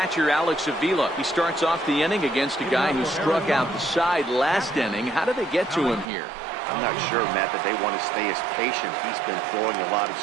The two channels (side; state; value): left; drops out; at 6.1 s